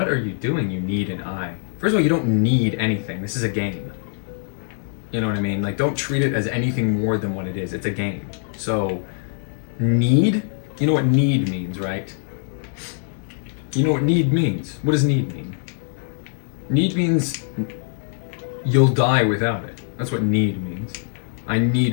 are you doing? You need an eye. First of all, you don't need anything. This is a game. You know what I mean? Like, don't treat it as anything more than what it is. It's a game. So, need? You know what need means, right? You know what need means? What does need mean? Need means you'll die without it. That's what need means. I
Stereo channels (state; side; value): silent; right; digital silence